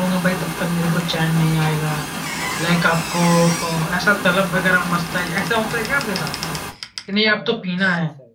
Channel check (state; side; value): identical; both; correlation 1.00